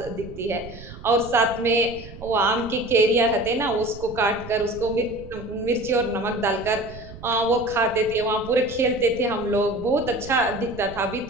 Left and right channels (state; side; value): noise; right; rumble, 15 dB below the sound